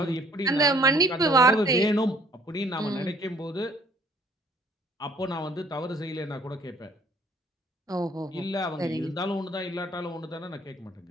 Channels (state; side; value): normal; both; correlation 0.58